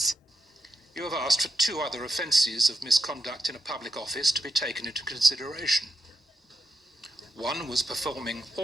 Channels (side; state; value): both; normal; correlation 0.86